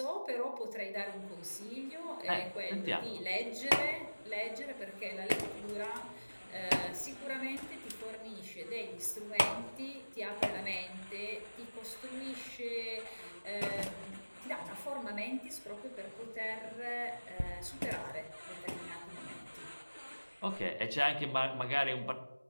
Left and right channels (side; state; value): both; inverted; correlation -1.00